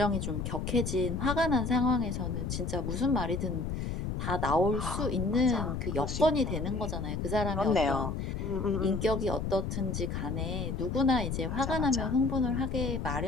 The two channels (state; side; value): noise; left; rumble, 3 dB below the sound